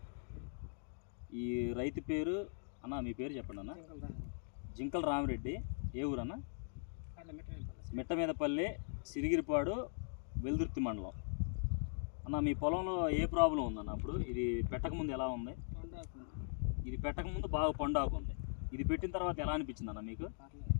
ఈ రైతు పేరు అన్న, మీ పేరు చెప్పండి అన్న. జింకల రామిరెడ్డి. ఏ ఊరు అన్న? మిట్టమీదపల్లి, సిరిగిరిపాడు, వెల్దుర్తి మండలం. అన్న, మీ పొలంలో ఏ ప్రాబ్లం ఉందన్న? అప్పుడు ఇది పెట్టకముందు ఎలా ఉంది? ఇది పెట్టకముందు బాగా పండాకు ఉంది. ఇది పెట్టిన తర్వాత ఎలా అనిపించింది అన్న మీకు?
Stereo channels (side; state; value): right; silent; digital silence